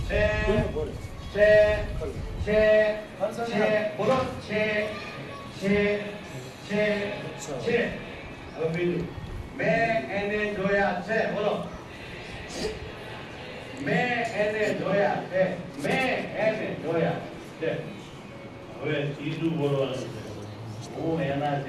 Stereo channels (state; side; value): identical; both; correlation 1.00